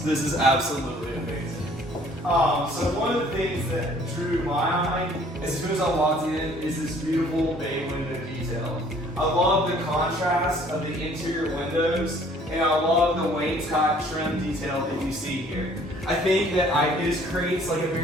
This is absolutely amazing. So one of the things that drew my eye as soon as I walked in is this beautiful bay window detail. I love the contrast of the interior windows, and I love the wainscot trim detail that you see here. I think that it just creates like a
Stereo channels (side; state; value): both; normal; correlation 0.57